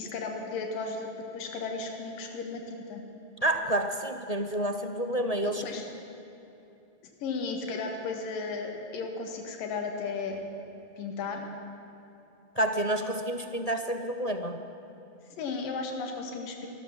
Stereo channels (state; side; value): late; right; 1.8 ms